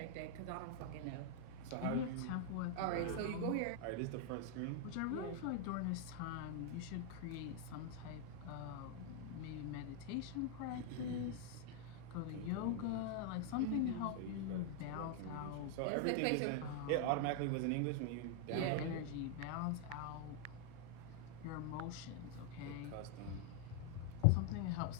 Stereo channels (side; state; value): both; different; correlation 0.00